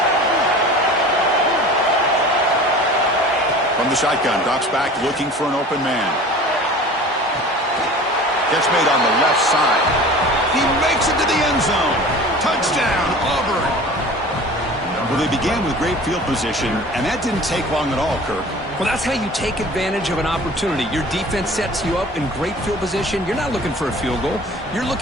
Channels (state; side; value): normal; both; correlation 0.41